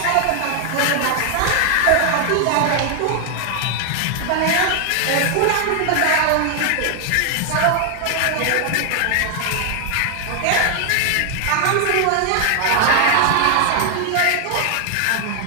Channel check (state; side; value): different; both; correlation 0.00